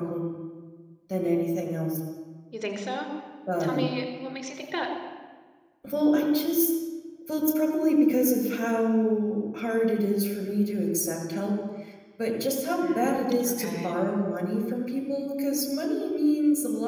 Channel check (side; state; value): both; identical; correlation 1.00